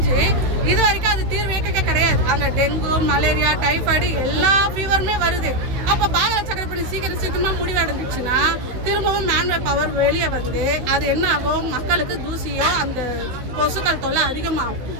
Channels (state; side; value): late; left; 16 ms